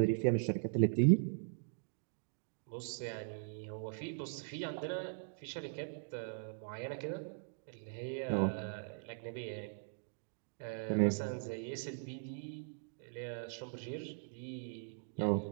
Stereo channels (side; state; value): left; silent; digital silence